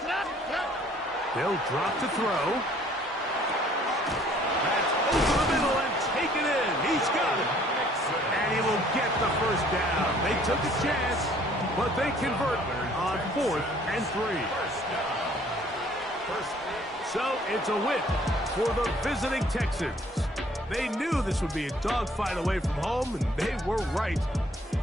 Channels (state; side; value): normal; both; correlation 0.58